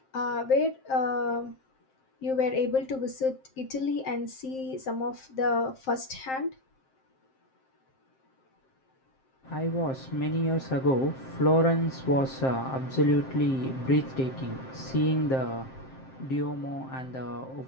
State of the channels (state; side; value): late; right; 7.6 ms